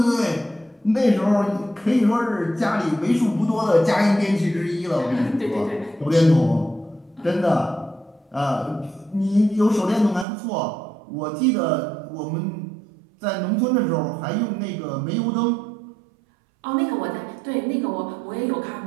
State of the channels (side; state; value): left; drops out; at 10.2 s